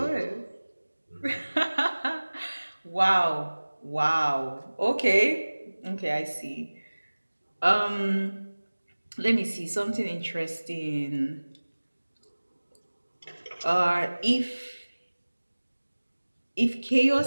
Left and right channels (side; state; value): both; inverted; correlation -1.00